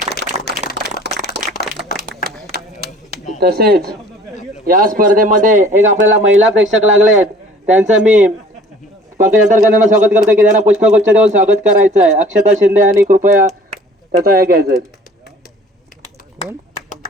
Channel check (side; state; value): both; normal; correlation 0.51